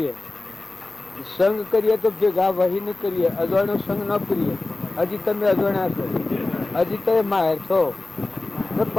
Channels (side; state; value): right; quieter; 3.2 dB